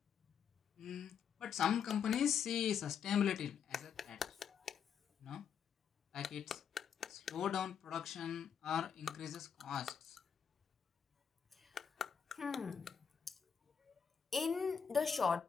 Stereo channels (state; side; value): quieter; right; 7.2 dB